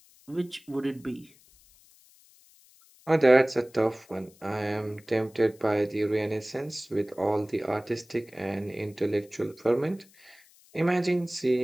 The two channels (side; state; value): left; noise; hiss, 28 dB below the sound